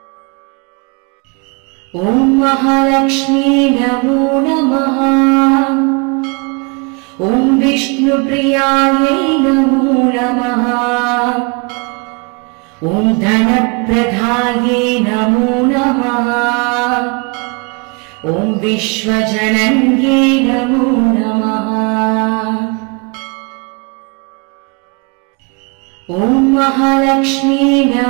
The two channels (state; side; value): quieter; left; 31.9 dB